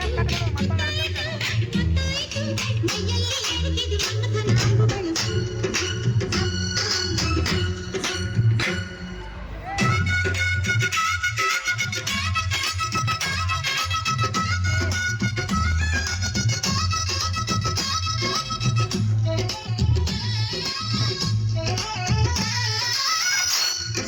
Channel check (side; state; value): both; identical; correlation 1.00